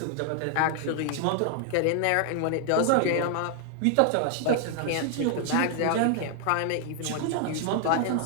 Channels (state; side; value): different; both; correlation 0.00